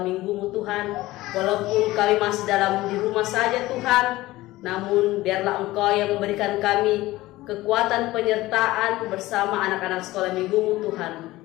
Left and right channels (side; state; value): right; quieter; 17.9 dB